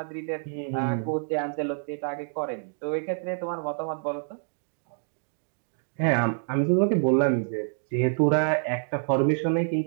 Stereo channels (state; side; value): silent; left; digital silence